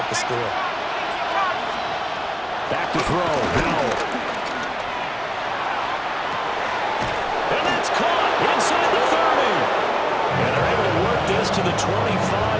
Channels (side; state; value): both; identical; correlation 1.00